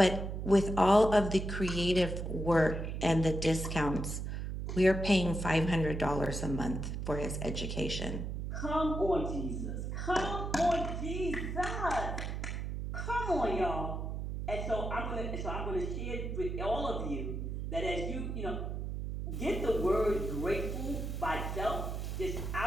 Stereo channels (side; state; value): right; noise; hum, 4 dB below the sound